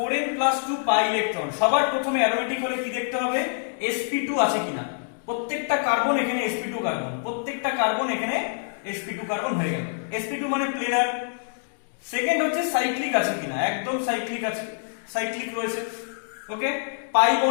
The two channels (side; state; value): right; silent; digital silence